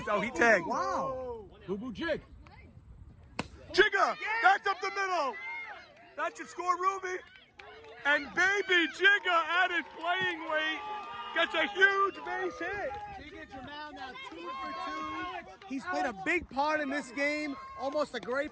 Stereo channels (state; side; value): identical; both; correlation 1.00